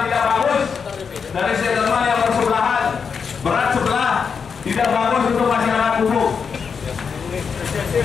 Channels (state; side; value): quieter; right; 6.0 dB